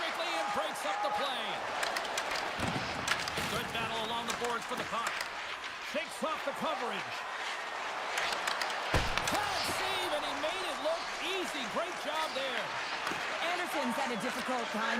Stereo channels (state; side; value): identical; both; correlation 1.00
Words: and breaks up the play. Good battle along the boards for the puck. Shakes off the coverage. Hard save, and he made it look easy. Great job there. Anderson's had a difficult time